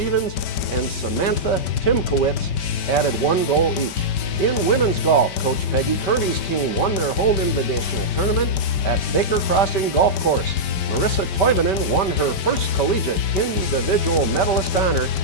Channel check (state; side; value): late; right; 5.2 ms